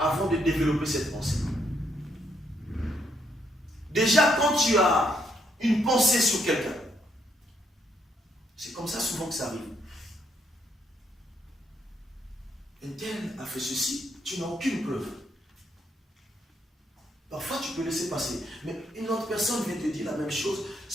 de développer cette pensée. Déjà, quand tu as une pensée sur quelqu'un, c'est comme ça souvent que ça arrive. Un tel a fait ceci, tu n'as aucune preuve. Parfois, tu peux laisser passer. Mais une autre personne vient te dire la même chose.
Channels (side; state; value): both; normal; correlation 0.74